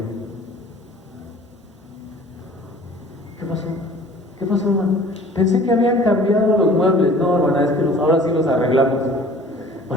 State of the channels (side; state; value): both; normal; correlation 0.48